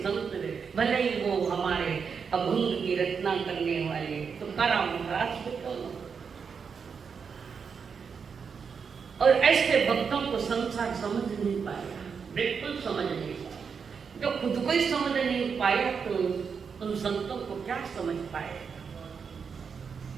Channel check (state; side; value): quieter; left; 6.1 dB